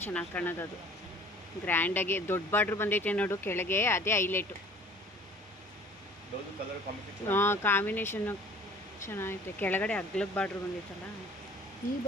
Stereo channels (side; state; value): both; normal; correlation 0.50